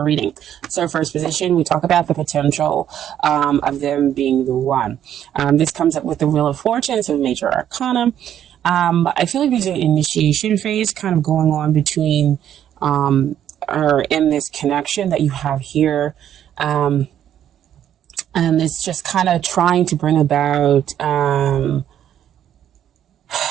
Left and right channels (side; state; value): left; quieter; 10.4 dB